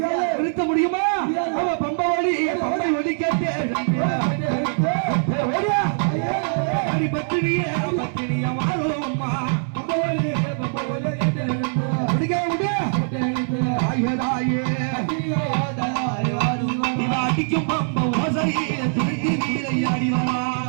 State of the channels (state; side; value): silent; left; 64 dB below the other